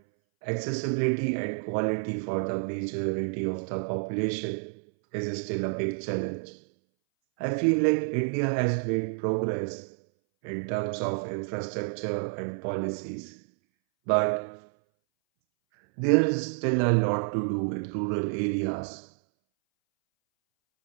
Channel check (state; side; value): silent; left; 59 dB below the other